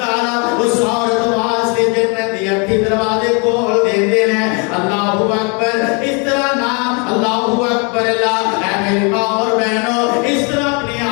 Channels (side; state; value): right; quieter; 33.5 dB